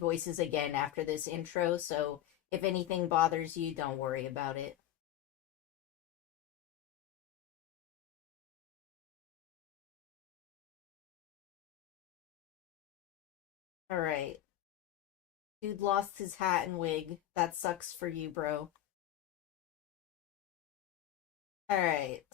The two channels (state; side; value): quieter; right; 12.5 dB